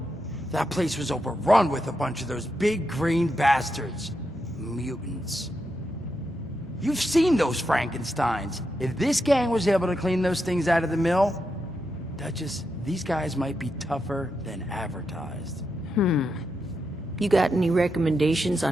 That place was overrun with a bunch of those big green bastards. Mutants. You've seen those Frankensteins. If this gang was able to clean those things out of the mill, Duchess, these guys might be tougher than advertised. You got any recommendations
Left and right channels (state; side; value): normal; both; correlation 0.85